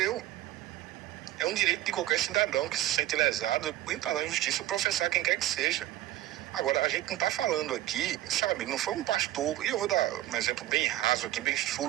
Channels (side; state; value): left; quieter; 14.7 dB